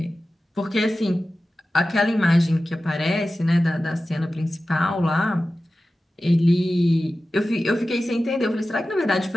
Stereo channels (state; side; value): normal; both; correlation 0.95